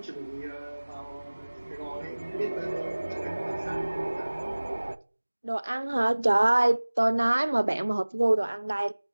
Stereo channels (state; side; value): inverted; both; correlation -1.00